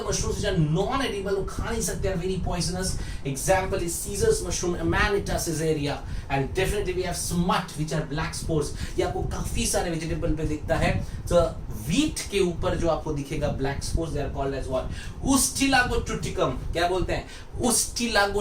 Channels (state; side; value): identical; both; correlation 1.00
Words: mushrooms which are non-edible. वो खा नहीं सकते, are very poisonous. Example is Caesar's mushroom, Amanita caesarea, and definitely we have smut which are black spores. ये आपको काफी सारे vegetable पे दिखता है. So वीट के ऊपर जो आपको दिखेगा black spores, they are called as what, Ustilago triticum. क्या बोलते हैं?